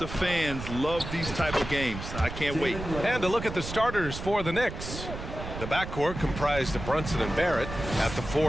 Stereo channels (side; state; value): right; noise; rumble, 8 dB below the sound